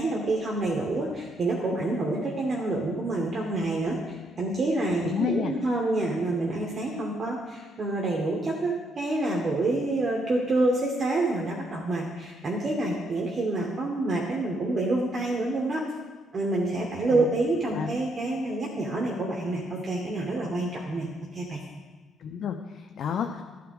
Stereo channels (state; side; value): normal; both; correlation 0.74